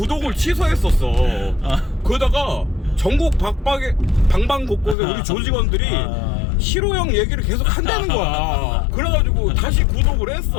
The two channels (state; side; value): drops out; right; at 5.0 s